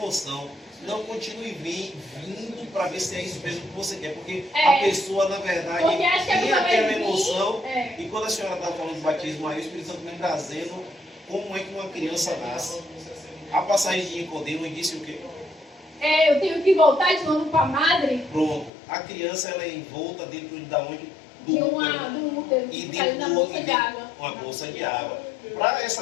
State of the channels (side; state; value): right; drops out; at 18.7 s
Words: Não continue vindo para ver se é isso mesmo que você quer, porque a pessoa, na verdade, tem aquela emoção. E quando a senhora está falando do batismo, aí o Espírito Santo vem trazendo como é que uma criança nasce. A passagem de Nicodemo disse o quê? Eu tenho que voltar de novo para a madre. Pronto. A criança ela é envolta dentro de onde? Do útero. E dentro da bolsa de água. Uma bolsa de água. Para